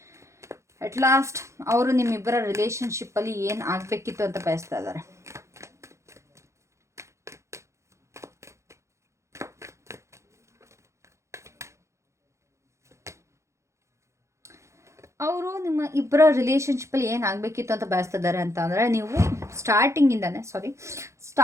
ಅಟ್ ಲಾಸ್ಟ್ ಅವರು ನಿಮ್ಮಿಬ್ಬರ ರಿಲೇಷನ್ಶಿಪ್ಪಲ್ಲಿ ಏನು ಆಗಬೇಕಿತ್ತು ಅಂತ ಬಯಸ್ತಾ ಇದ್ದಾರೆ. ಅವರು ನಿಮ್ಮ ಇಬ್ಬರ ರಿಲೇಷನ್ಶಿಪ್ಪಲ್ಲಿ ಏನು ಆಗಬೇಕಿತ್ತು ಅಂತ ಬಯಸ್ತಿದ್ದಾರೆ ಅಂತ ಅಂದರೆ, ನೀವು ಸ್ಟಾರ್ಟಿಂಗಿಂದನೇ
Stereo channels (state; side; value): late; left; 0.14 ms